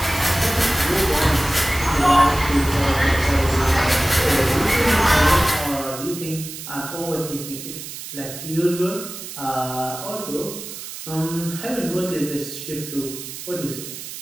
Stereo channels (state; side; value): noise; right; hiss, 10 dB below the sound